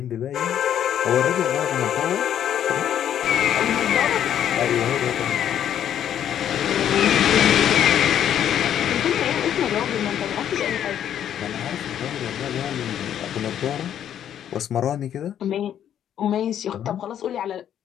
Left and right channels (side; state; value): right; quieter; 10.0 dB